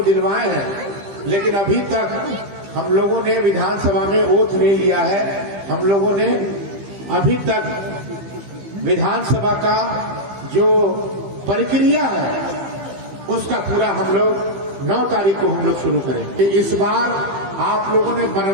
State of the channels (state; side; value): late; left; 15 ms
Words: दिलवाए हैं, लेकिन अभी तक हम लोगों ने विधानसभा में ओथ नहीं लिया है। हम लोगों ने अभी तक विधानसभा का जो प्रक्रिया है उसका पूरा हम लोग 9 तारीख को हम लोग शुरू करेंगे। इस बार आप लोगों ने